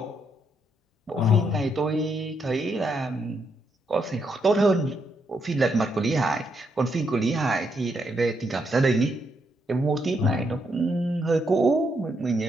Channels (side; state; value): both; normal; correlation 0.78